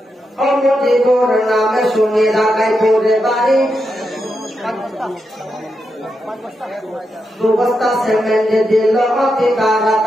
মুজিবুর নামে শুনে ঢাকায় পড়ে বাড়ি, 2 বস্তা সিমেন্ট দিল অতি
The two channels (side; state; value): both; normal; correlation 0.85